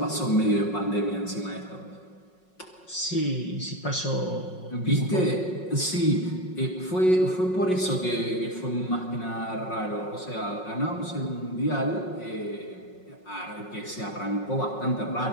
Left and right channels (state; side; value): late; right; 5.5 ms